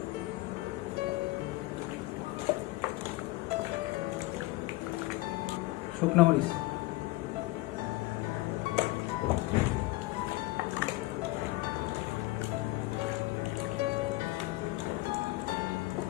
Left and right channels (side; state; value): right; quieter; 19.9 dB